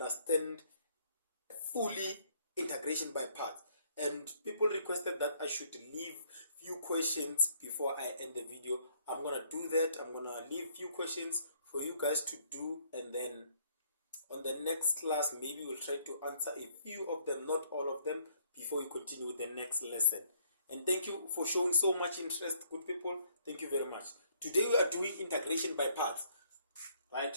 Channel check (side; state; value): both; inverted; correlation -0.66